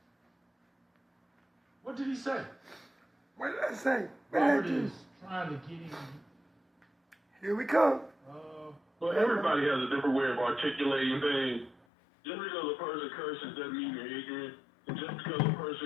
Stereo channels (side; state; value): right; drops out; at 11.8 s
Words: What did he say? What did I say? Robert is trying to get him. Here we come. Well, everybody has a different way of articulating things. Just because a person curses doesn't mean they're ignorant. And just because a